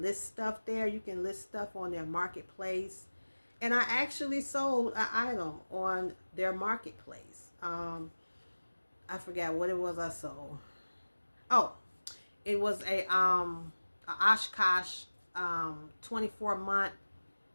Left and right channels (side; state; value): both; inverted; correlation -1.00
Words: stuff there. You can list stuff on their marketplace. And I actually sold an item on their marketplace. I forgot what it was I sold. Oh, it was a Oshkosh 24-month